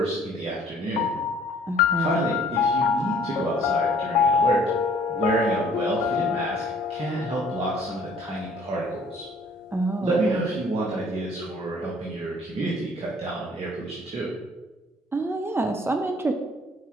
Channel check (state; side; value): normal; both; correlation 0.56